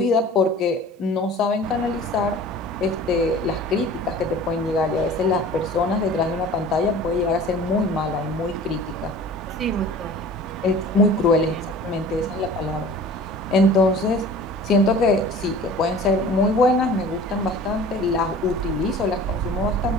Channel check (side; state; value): both; normal; correlation 0.43